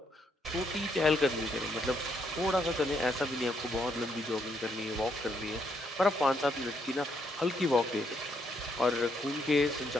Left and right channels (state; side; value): normal; both; correlation 0.75